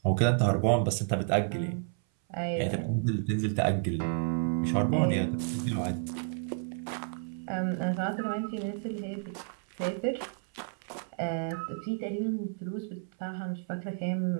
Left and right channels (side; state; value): left; silent; 57 dB below the other